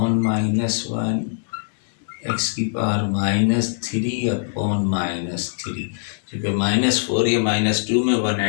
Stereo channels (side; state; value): right; silent; 63 dB below the other